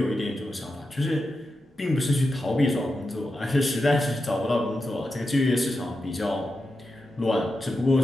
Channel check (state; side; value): normal; both; correlation 0.89